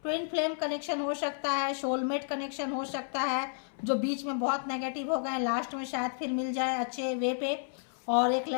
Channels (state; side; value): silent; right; 57 dB below the other